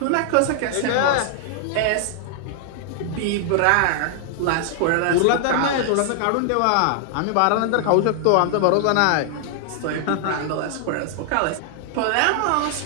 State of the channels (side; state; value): both; different; correlation 0.00